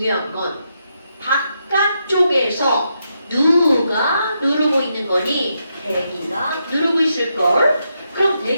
건 바깥쪽에서 누가 누르고 있는 거니? 대기가 누르고 있을걸. 그럼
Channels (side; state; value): both; inverted; correlation -0.82